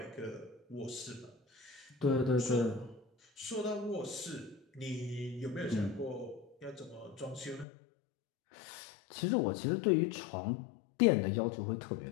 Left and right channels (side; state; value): right; drops out; at 7.7 s